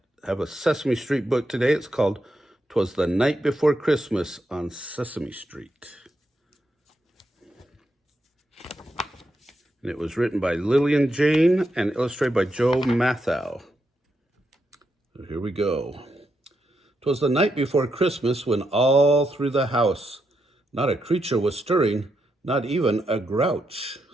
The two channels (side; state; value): both; normal; correlation 0.82